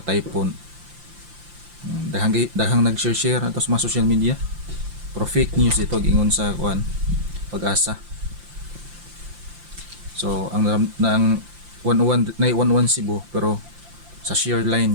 typhoon. Dahang nag-share ato sa mga social media. Pero fake news ito gingon sa kuan Pag-asa. So ang 11 Cebu pero sa shear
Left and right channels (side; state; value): left; late; 5.8 ms